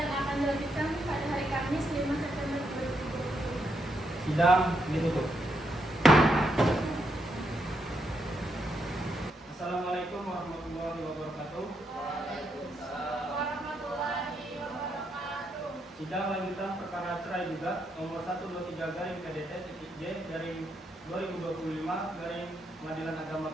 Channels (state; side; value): normal; both; correlation 0.79